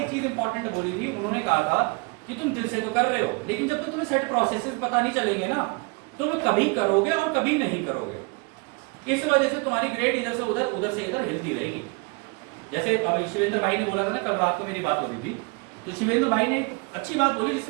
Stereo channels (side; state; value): left; quieter; 30.5 dB